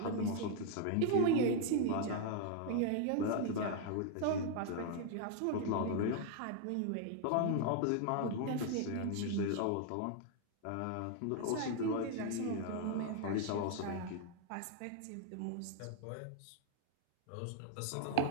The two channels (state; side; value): different; both; correlation 0.00